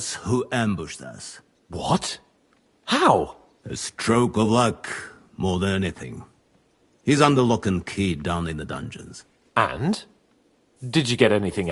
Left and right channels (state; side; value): identical; both; correlation 1.00